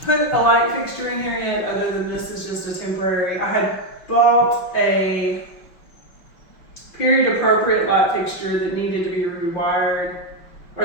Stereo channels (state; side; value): late; right; 5.6 ms